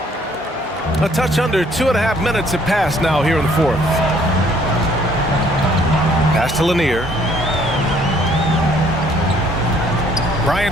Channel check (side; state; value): both; normal; correlation 0.62